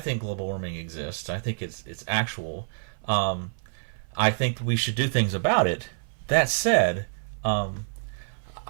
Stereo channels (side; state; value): left; silent; 56 dB below the other